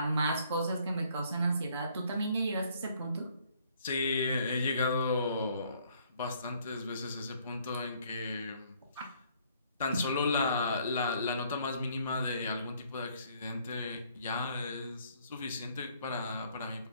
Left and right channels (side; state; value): both; inverted; correlation -0.64